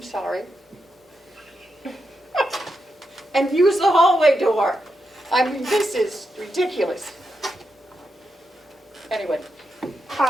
sorry. And use the hallway door. I mean, this is ridiculous. Anyway,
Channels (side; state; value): both; normal; correlation 0.85